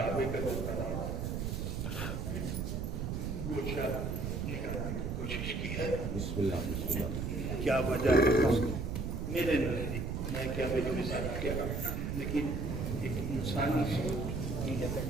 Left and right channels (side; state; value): right; noise; rumble, 2 dB below the sound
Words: کا جو طواف کچھ نکالنے کی کوشش کی ہے. کیا وجہ ہے میرے نزدیک، میں کیا میری مثال کیا، لیکن ایک انسانی سوچ